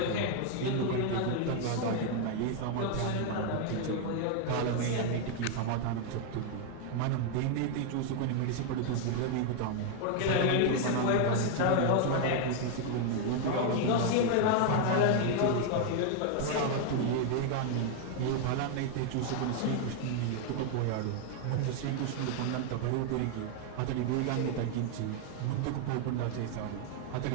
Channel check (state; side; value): different; both; correlation 0.00